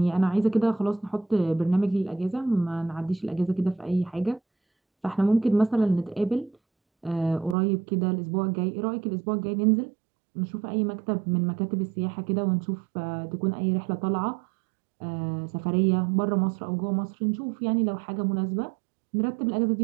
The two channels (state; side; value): drops out; left; at 7.6 s